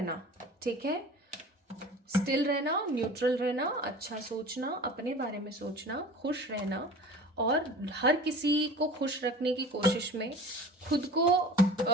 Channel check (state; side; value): normal; both; correlation 0.40